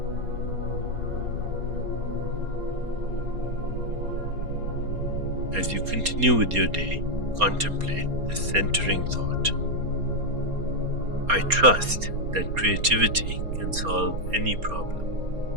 As you continue with your day, contemplate this centering thought. I trust that creativity can solve any problem.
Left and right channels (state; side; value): late; left; 4.2 ms